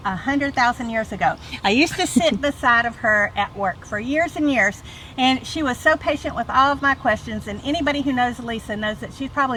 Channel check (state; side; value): identical; both; correlation 1.00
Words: 100,000 years ago. I used to sit beside of her at work for years and years, and she was so patient with all of my questions. And anybody who knows Lisa knows that she's